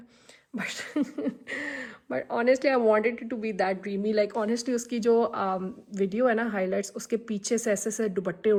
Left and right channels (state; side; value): identical; both; correlation 1.00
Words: But honestly I wanted to be that dreamy. Like honestly उसकी जो वीडियो है ना हाईलाइट्स, उसके पीछे से ऐसे ऐसे दुपट्टे